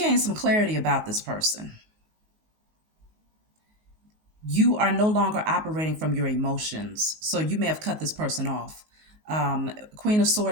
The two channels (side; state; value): left; late; 19 ms